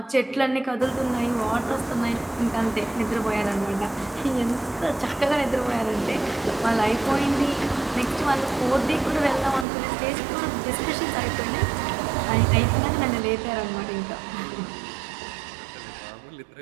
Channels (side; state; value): left; drops out; at 9.7 s